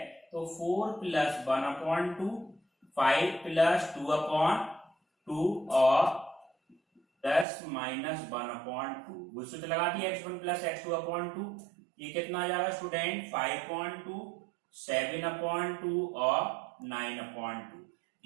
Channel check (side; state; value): left; drops out; at 7.5 s